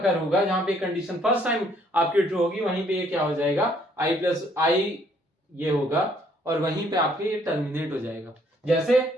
होगा, जहां पे कंडीशन फर्स्ट टाइम आपकी ट्रू होगी, वहीं पे ये क्या हो जाएगा? i+i ये होगा, और वहीं पे आपके ये टर्मिनेट हो जाएगा। जैसे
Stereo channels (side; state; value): both; normal; correlation 0.65